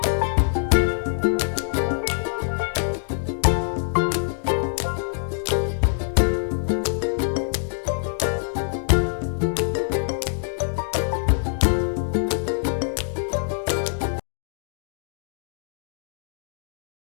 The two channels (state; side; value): silent; right; 62 dB below the other